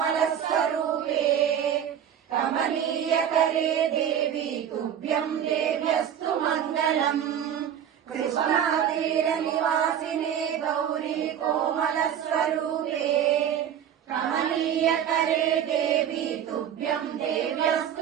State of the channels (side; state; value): left; quieter; 9.3 dB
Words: कमनीयकरे देवी तुभ्यं देव्यस्तु मङ्गलम् कृष्णातीरनिवासिने गौरी कोमलस्वरूपे कमनीयकरे देवी तुभ्यं